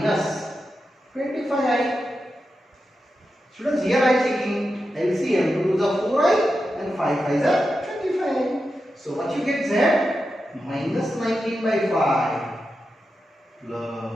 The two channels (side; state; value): both; normal; correlation 0.89